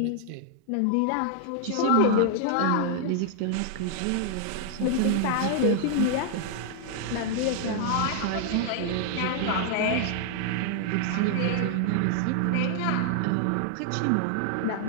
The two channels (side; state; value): both; different; correlation 0.00